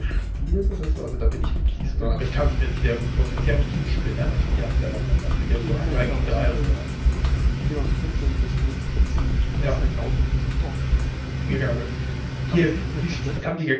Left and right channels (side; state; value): both; identical; correlation 1.00